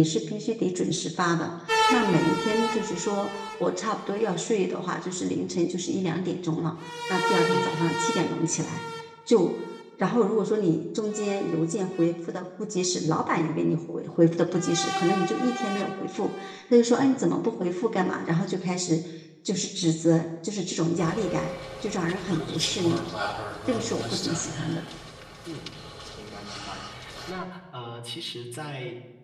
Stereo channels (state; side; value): identical; both; correlation 1.00